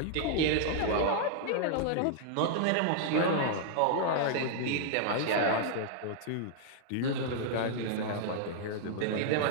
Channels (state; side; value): different; both; correlation -0.01